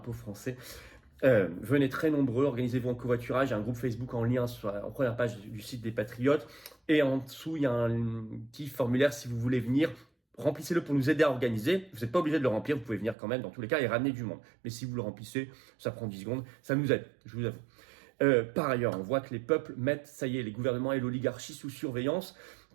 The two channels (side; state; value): left; drops out; at 13.2 s